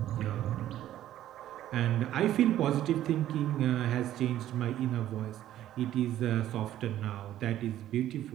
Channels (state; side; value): quieter; left; 12.7 dB